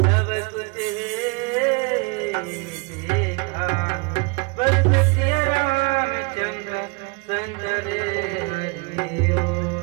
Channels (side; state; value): left; quieter; 29.7 dB